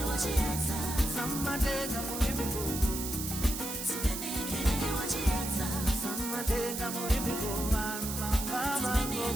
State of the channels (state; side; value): noise; right; hiss, 5 dB below the sound